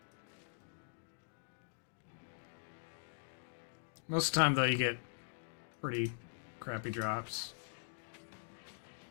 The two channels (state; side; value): silent; right; digital silence